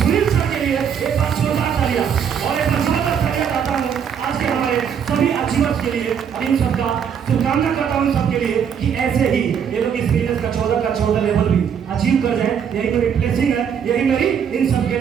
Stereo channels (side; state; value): left; quieter; 7.7 dB